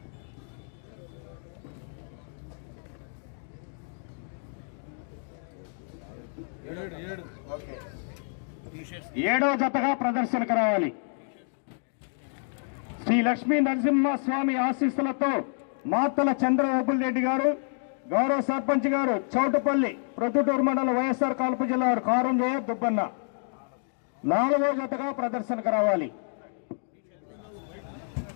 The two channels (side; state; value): right; silent; 59 dB below the other